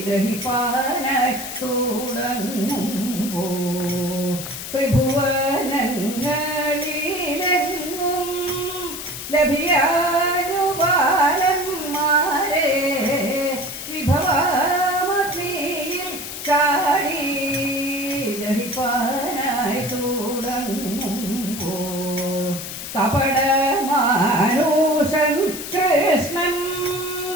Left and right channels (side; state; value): left; noise; hiss, 8 dB below the sound